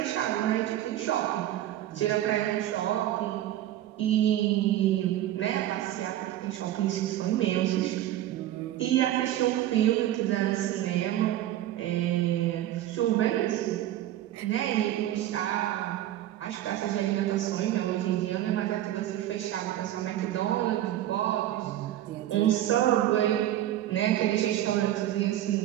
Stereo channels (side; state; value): left; quieter; 13.1 dB